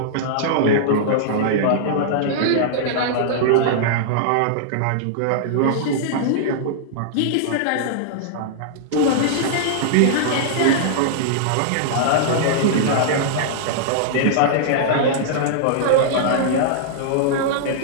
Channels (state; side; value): different; both; correlation -0.02